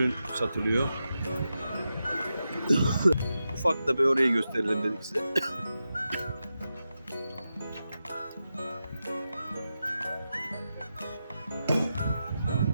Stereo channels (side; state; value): both; inverted; correlation -0.90